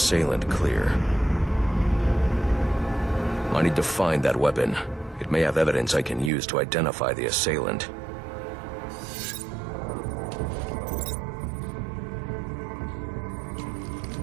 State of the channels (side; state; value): left; drops out; at 6.3 s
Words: clear. I need to find that weapon. It may have evidence I can use to identify the assailant.